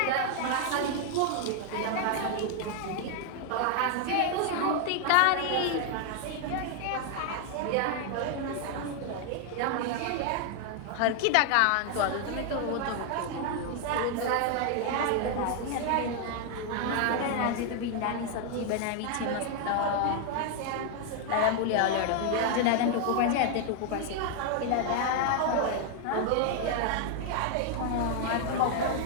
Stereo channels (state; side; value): different; both; correlation 0.00